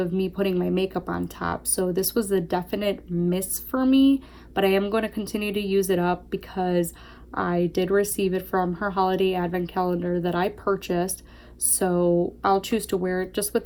me putting my makeup on top. So this was a definite miss for me, but I am going to continue to use it up because I did receive it from her holiday advent calendar that I purchased, so I'll choose to wear it just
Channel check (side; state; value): both; identical; correlation 1.00